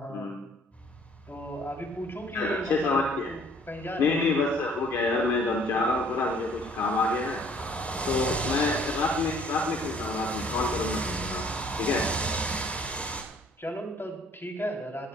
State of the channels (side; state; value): both; normal; correlation 0.57